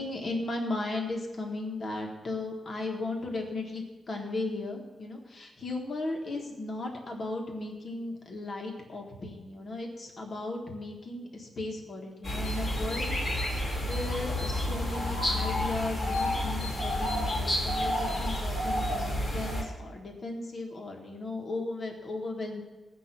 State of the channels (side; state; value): both; normal; correlation 0.81